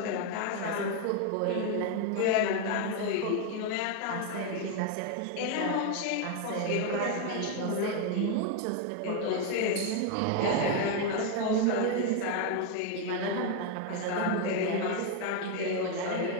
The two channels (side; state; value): both; different; correlation 0.01